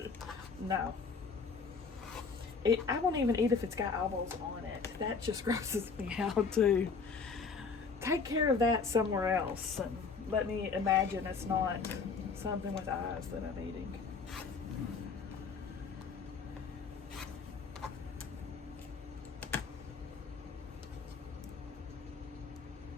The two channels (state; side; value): quieter; right; 5.0 dB